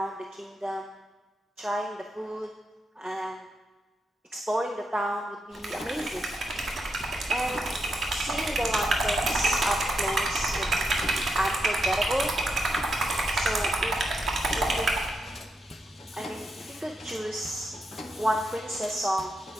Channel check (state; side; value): normal; both; correlation 0.83